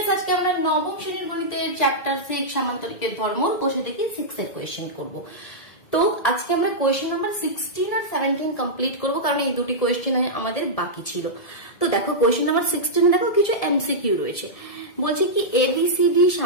আজকে আমরা নবম শ্রেণীর গণিতের চ্যাপ্টার 6 সামান্তরিকের ধর্ম বসে দেখি 6 এর কোয়েশ্চেন করব। তো আজকে আমরা কোয়েশ্চেন নাম্বার 16 আর 17 কমপ্লিট করব, কারণ এই দুটি কোয়েশ্চেন আমাদের বাকি ছিল। তো দেখো কোয়েশ্চেন নাম্বার 16 দেখো কিছু এমসিকিউ রয়েছে। বলছে কি এবিসিডি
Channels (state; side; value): late; right; 1.8 ms